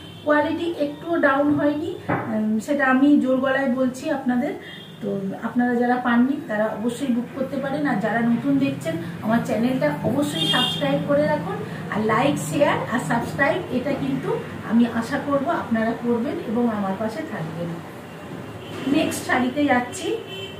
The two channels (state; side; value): identical; both; correlation 1.00